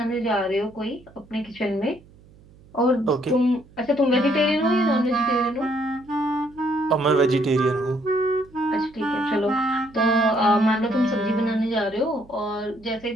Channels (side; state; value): right; noise; hum, 25 dB below the sound